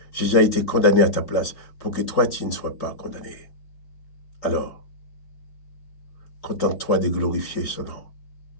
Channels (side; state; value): right; late; 3.8 ms